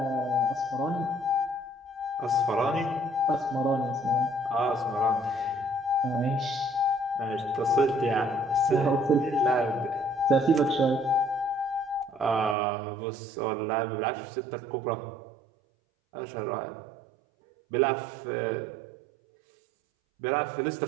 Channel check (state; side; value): drops out; left; at 12.6 s